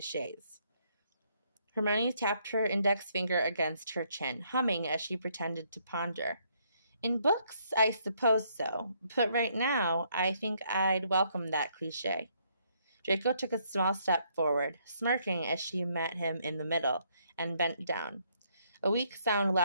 Hermione tapped her index finger against her chin, humming as she pretended to ponder. In books, I suppose so, but right now, I think I'd welcome that cliché. Draco took a small step forward, smirking as she met him in the middle, and bent down. A weak sound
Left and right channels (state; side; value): inverted; both; correlation -0.70